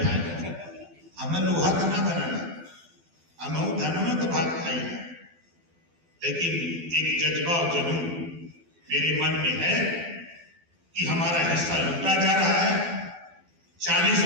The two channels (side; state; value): left; late; 12 ms